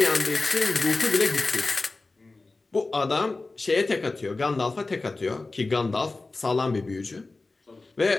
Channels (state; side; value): quieter; right; 3.4 dB